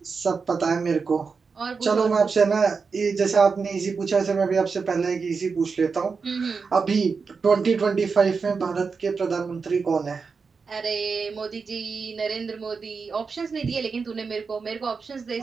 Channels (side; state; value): left; quieter; 5.1 dB